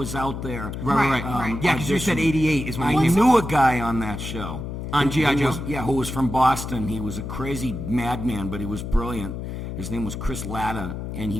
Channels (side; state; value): left; noise; hum, 6 dB below the sound